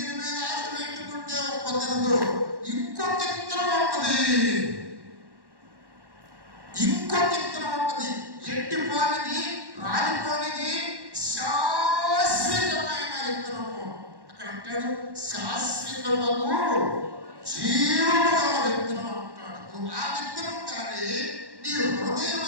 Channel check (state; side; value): late; left; 1.1 ms